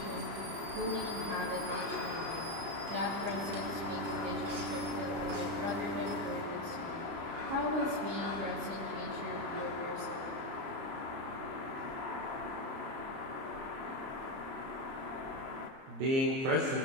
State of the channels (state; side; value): late; left; 30 ms